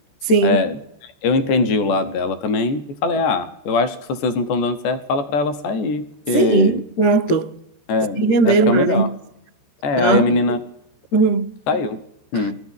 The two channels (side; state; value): right; late; 13 ms